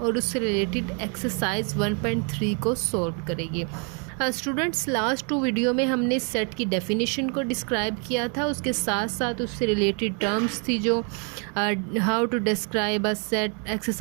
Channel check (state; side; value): quieter; left; 38.2 dB